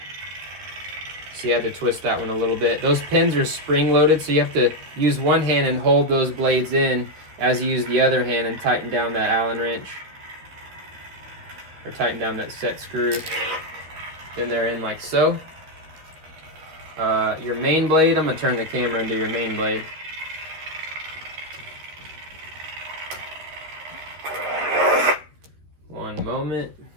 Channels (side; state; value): left; late; 13 ms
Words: So you had to twist that one a little bit. Those pins are spring loaded, so you have to use one hand and hold those blades in as you use the other hand and tighten down that Allen wrench. Or tighten down that set screw. Then they're in like so. Your main blade, I'm gonna turn the camera into your main blade. One moment.